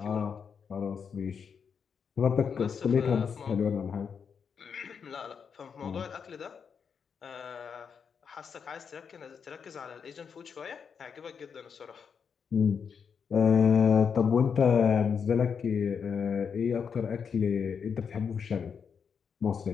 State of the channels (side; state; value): right; quieter; 6.6 dB